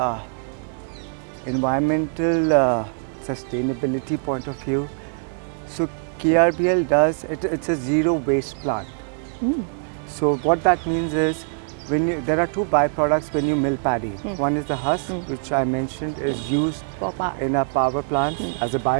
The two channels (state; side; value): silent; left; digital silence